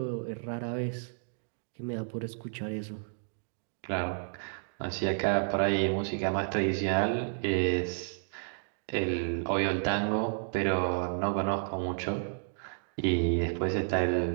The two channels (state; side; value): silent; left; digital silence